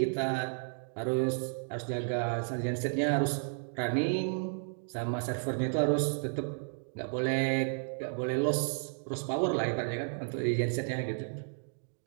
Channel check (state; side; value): silent; left; digital silence